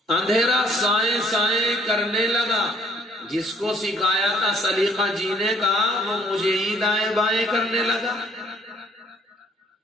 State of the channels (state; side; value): normal; both; correlation 0.60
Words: اندھیرا سائیں سائیں کرنے لگا. جس کو سکھایا تھا سلیقہ جینے کا وہ مجھے ہی دائیں بائیں کرنے لگا.